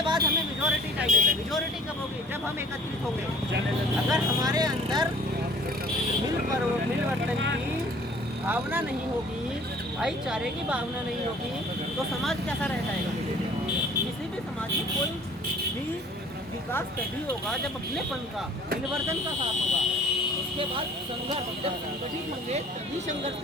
बाद हमें मेजॉरिटी चाहिए। मेजॉरिटी कब होगी? जब हम एकत्रित होंगे। अगर हमारे अंदर मिलवर्तन की भावना नहीं होगी, भाईचारे की भावना नहीं होगी, तो समाज कैसा रह जाएगा? किसी भी समाज में कोई भी विकास तभी होगा जब अपनेपन का, मिलवर्तन का साथ होगा। उसके बाद संघर्ष, जब संगठित होंगे तभी संघर्ष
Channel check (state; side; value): normal; both; correlation 0.51